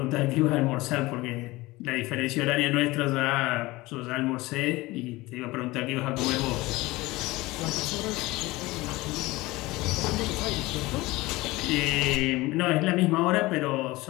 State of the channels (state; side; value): quieter; right; 20.5 dB